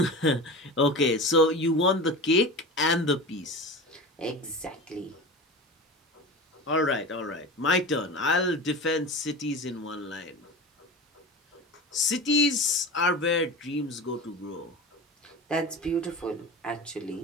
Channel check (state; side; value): normal; both; correlation 0.30